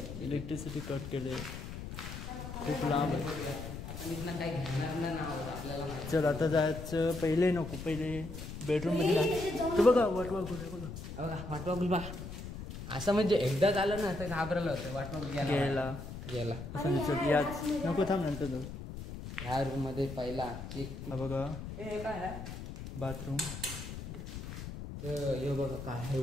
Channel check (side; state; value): left; noise; rumble, 9 dB below the sound